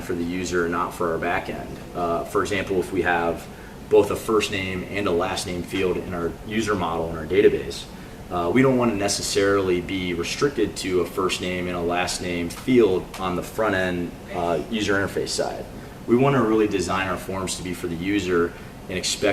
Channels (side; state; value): both; identical; correlation 1.00